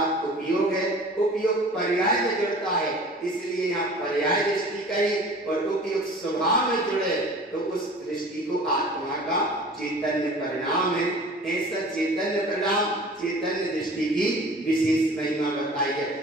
उपयोग है, उपयोग पर्याय में जुड़ता है, इसलिए यहाँ पर्याय दृष्टि कही, और उपयोग स्वभाव में जुड़े तो उस दृष्टि को आत्मा का चैतन्य परिणाम है। ऐसा चैतन्य परिणाम, चैतन्य दृष्टि की विशेष महिमा बताई है।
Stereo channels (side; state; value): both; normal; correlation 0.44